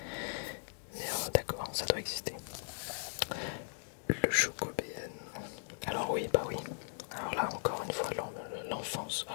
Mais d'accord, ça doit exister. Le Chocobéen. Alors oui, bah oui. Alors là, encore une fois, l'enfance.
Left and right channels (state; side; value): silent; right; digital silence